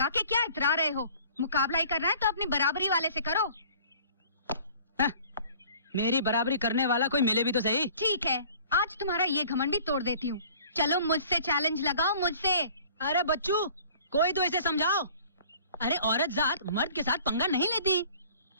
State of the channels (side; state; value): both; inverted; correlation -0.50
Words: के क्या इतरा रहे हो? मुकाबला ही करना है तो अपनी बराबरी वाले से करो। मेरी बराबरी करने वाला कोई मिले भी तो सही। ठीक है, आज तुम्हारा ये घमंड भी तोड़ देती हूँ। चलो मुझसे चैलेंज लगाओ, मुझसे। अरे बच्चू, कोई तो इसे समझाओ। अरे औरत जात मर्द के साथ पंगा नहीं लेती।